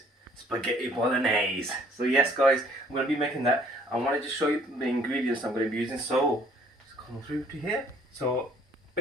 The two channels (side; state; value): both; normal; correlation 0.59